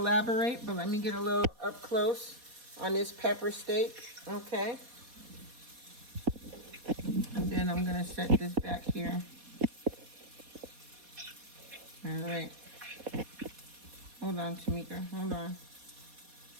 But let me get a little up close on this pepper steak, okay? And then I'm gonna set this back here. All right. Hold on, Tamika. Hold on.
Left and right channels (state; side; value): late; left; 4.2 ms